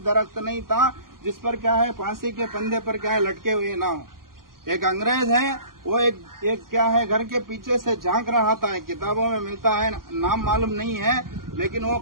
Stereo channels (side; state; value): left; late; 0.91 ms